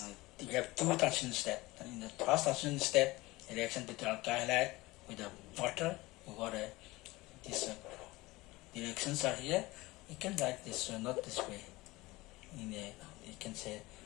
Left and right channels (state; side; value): quieter; right; 20.6 dB